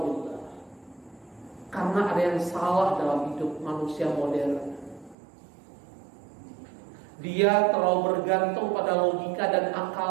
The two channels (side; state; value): left; drops out; at 5.2 s